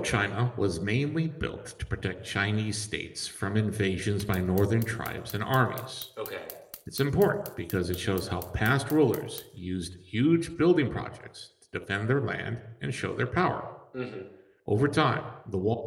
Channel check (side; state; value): both; identical; correlation 1.00